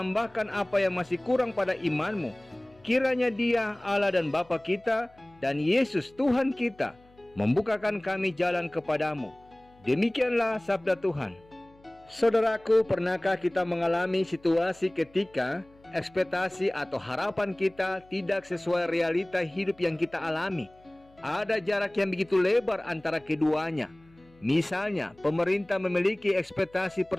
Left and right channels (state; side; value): noise; left; hum, 28 dB below the sound